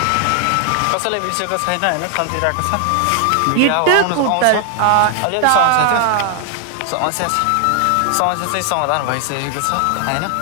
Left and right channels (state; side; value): different; both; correlation 0.00